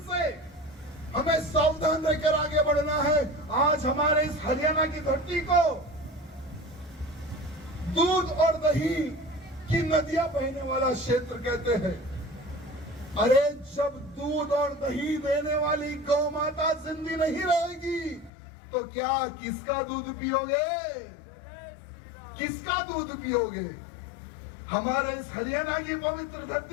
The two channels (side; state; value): right; drops out; at 18.3 s